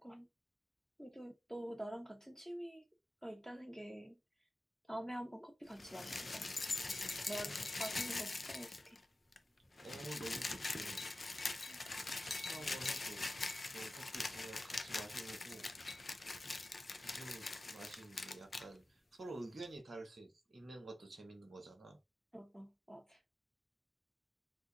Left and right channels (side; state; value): both; normal; correlation 0.95